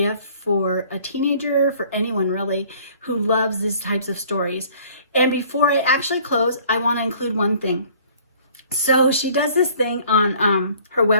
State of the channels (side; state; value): both; inverted; correlation -0.53